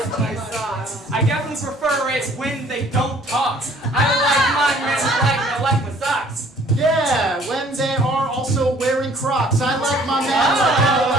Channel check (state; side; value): normal; both; correlation 0.57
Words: my socks. I definitely prefer it when they don't talk. I like my men like I like my socks. Yeah, when they are also wearing Crocs. I like my men like I